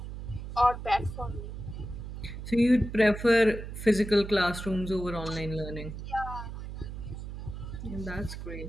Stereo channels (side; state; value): right; noise; hum, 8 dB below the sound